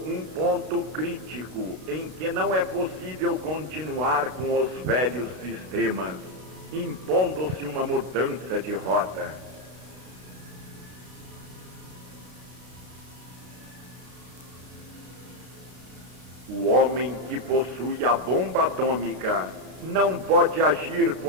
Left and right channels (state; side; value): late; left; 33 ms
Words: um ponto crítico em que não é possível continuar com os velhos sistemas, impondo-se uma mudança de rota. O homem que possui a bomba atômica não pode agir